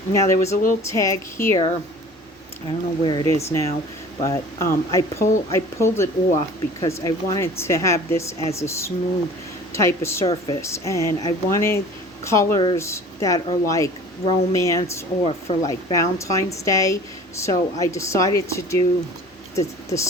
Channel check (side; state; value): both; normal; correlation 0.44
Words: Now there was a little tag here, I don't know where it is now, but I pulled it off because I wanted to have this as a smooth type of surface, and I wanted colors that are like romance or for like Valentine's Day. So I decided to do the